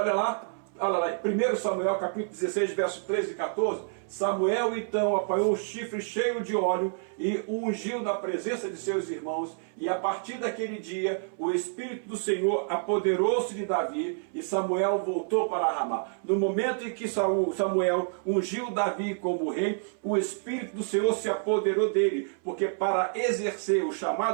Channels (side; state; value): left; silent; 59 dB below the other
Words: lá, 1 Samuel capítulo 16, verso 13 e 14. Samuel então apanhou um chifre cheio de óleo e o ungiu na presença de seus irmãos, e a partir daquele dia o Espírito do Senhor apoderou-se de Davi, e Samuel voltou para Ramá. No momento em que Samuel ungiu Davi como rei, o Espírito do Senhor se apoderou dele, porque para exercer o